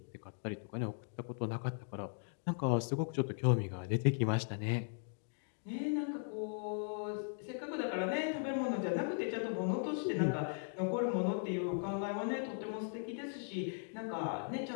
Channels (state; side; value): silent; right; digital silence